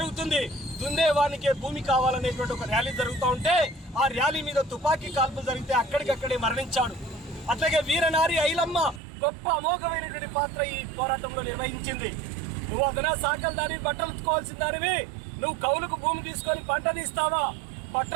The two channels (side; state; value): left; drops out; at 9.0 s